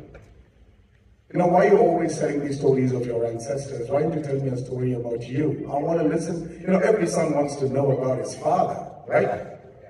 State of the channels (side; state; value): both; identical; correlation 1.00